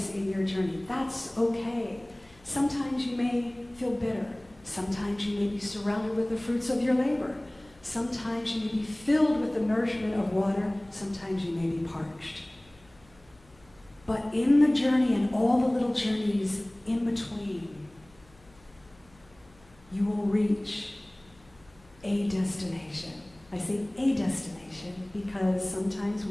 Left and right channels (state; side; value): noise; left; hum, 28 dB below the sound